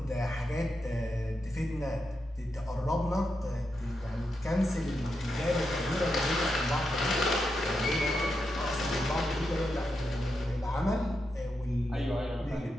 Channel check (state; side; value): normal; both; correlation 0.86